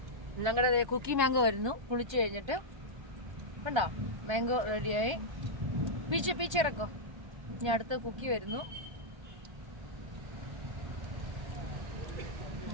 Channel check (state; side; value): late; left; 1.3 ms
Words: ഞങ്ങളുടെ കുക്കി മാംഗോ വരുന്നു. കുളിച്ചു കഴിഞ്ഞിട്ട് കണ്ടോ, മാംഗോ റെഡിയായി. പീച്ചിറക്കോ. ഇനി അടുത്ത കുക്കി വരുന്നു.